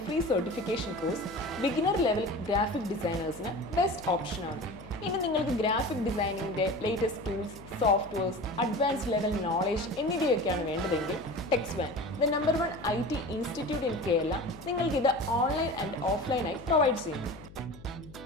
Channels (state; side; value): noise; left; hum, 18 dB below the sound